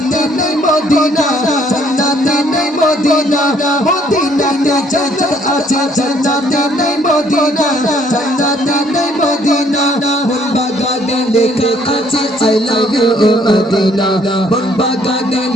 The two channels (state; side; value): normal; both; correlation 0.64